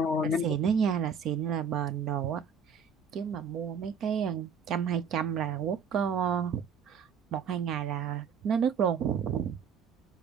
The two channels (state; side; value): quieter; left; 5.9 dB